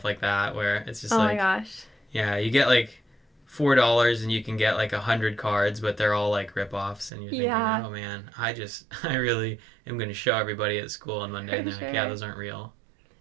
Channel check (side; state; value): left; drops out; at 7.1 s